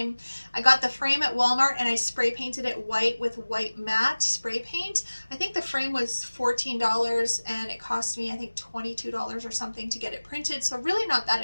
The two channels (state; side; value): inverted; both; correlation -1.00